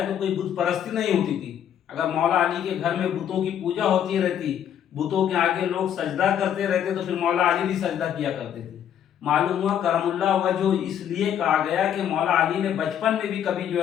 تو کوئی بت پرستی نہیں ہوتی تھی. اگر مولا علی کے گھر میں بتوں کی پوجا ہوتی رہتی، بتوں کے آگے لوگ سجدہ کرتے رہتے تو پھر مولا علی بھی سجدہ کیا کرتے تھے. معلوم ہوا کرم اللہ وجہ اس لیے کہا گیا کہ مولا علی نے بچپن میں بھی کبھی جو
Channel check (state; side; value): quieter; right; 9.6 dB